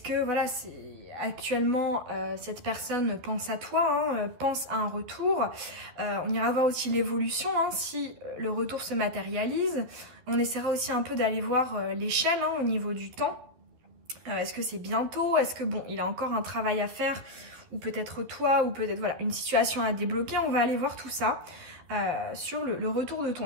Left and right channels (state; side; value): late; left; 12 ms